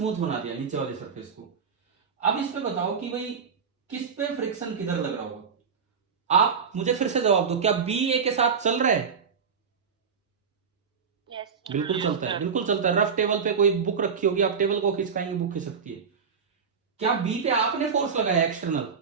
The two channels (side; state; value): left; quieter; 6.2 dB